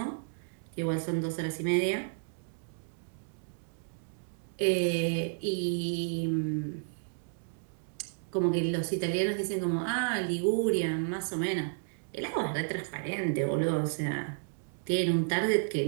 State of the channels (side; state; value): left; silent; digital silence